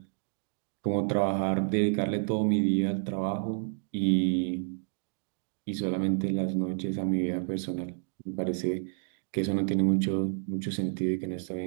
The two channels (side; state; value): left; silent; digital silence